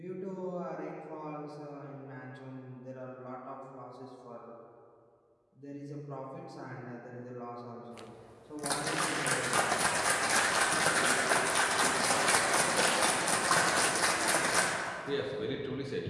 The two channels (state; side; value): identical; both; correlation 1.00